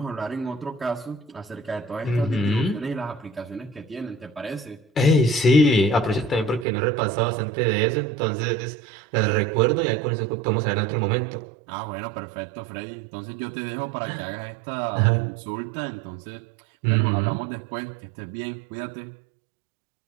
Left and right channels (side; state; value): left; drops out; at 6.7 s